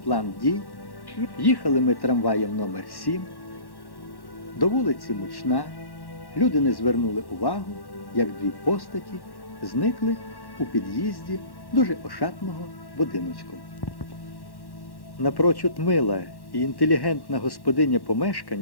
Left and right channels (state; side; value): late; right; 1.1 ms